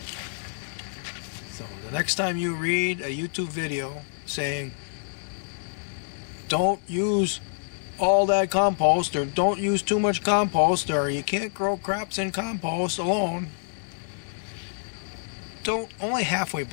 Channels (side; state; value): right; silent; digital silence